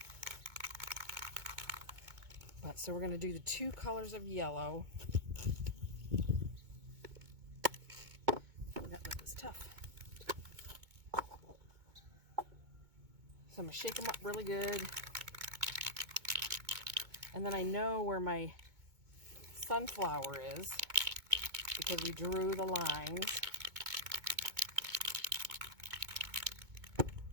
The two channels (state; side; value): late; left; 2.2 ms